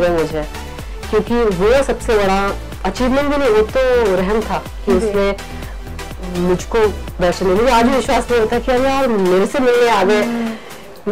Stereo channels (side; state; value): both; identical; correlation 1.00